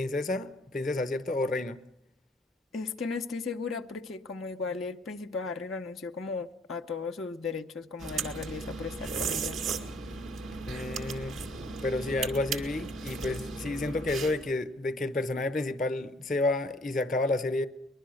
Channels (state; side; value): normal; both; correlation 0.60